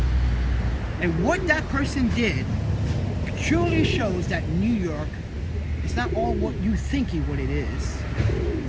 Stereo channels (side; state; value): both; identical; correlation 1.00